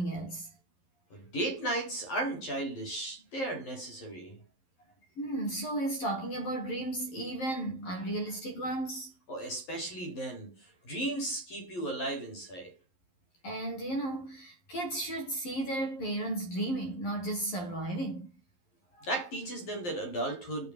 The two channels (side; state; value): right; late; 11 ms